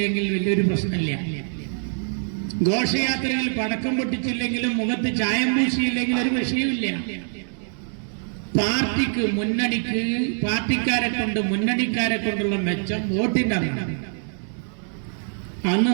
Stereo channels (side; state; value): left; silent; digital silence